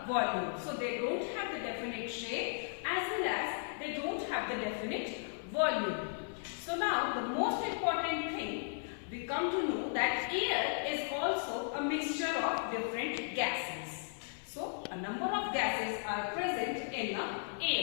volume. So they don't have the definite shape as well as they don't have the definite volume. So now the most important thing, we come to know that air is also a mixture of different gases. So a number of gases are present in the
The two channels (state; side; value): silent; right; 54 dB below the other